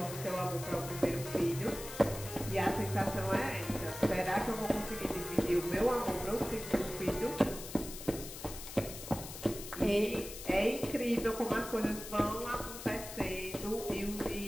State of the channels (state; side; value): noise; left; hiss, 11 dB below the sound